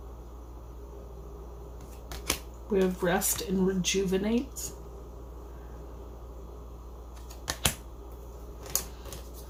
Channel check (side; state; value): both; identical; correlation 1.00